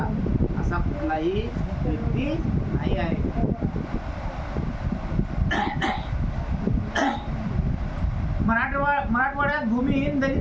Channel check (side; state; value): both; identical; correlation 1.00